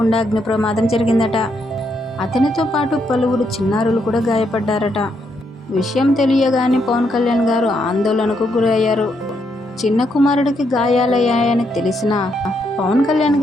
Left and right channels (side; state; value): both; normal; correlation 0.77